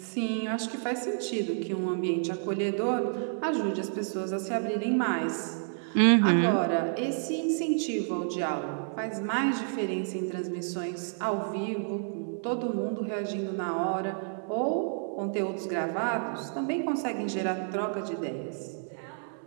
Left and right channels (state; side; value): silent; left; 58 dB below the other